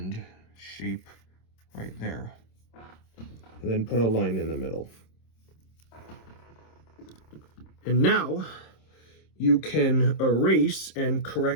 shape right there. And then put a line in the middle. And now you can erase and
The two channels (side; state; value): right; late; 26 ms